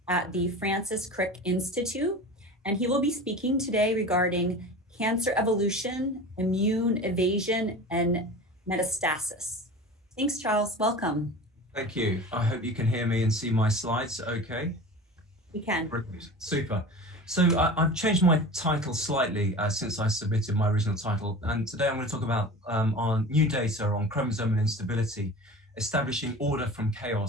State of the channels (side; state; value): both; normal; correlation 0.35